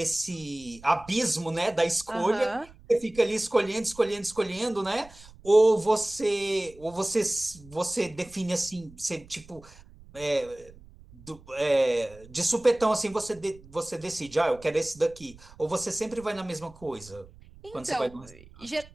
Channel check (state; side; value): noise; right; rumble, 22 dB below the sound